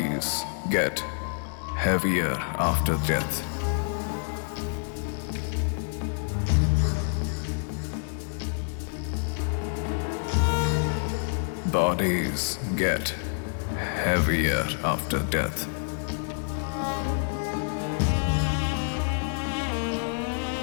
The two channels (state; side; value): silent; right; 60 dB below the other